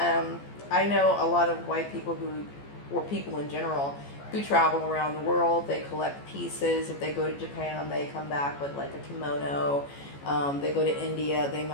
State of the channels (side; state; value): right; late; 14 ms